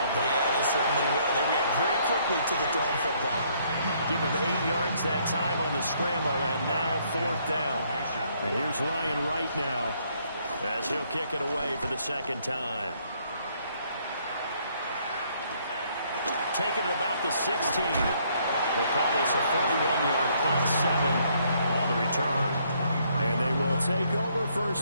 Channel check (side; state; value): both; inverted; correlation -0.68